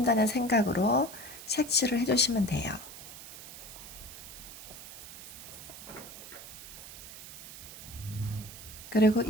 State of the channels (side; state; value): right; noise; hiss, 13 dB below the sound